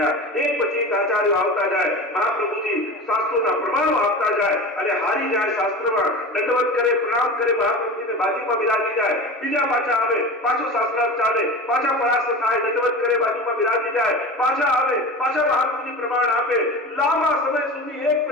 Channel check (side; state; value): both; normal; correlation 0.31